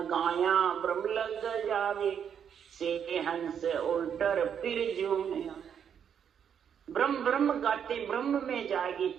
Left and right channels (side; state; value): left; quieter; 8.1 dB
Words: गाया ब्रह्म लग जावे, से हंस उल्टर फिर झूमे। ब्रह्म ब्रह्म गाते ब्रह्म में जाएगी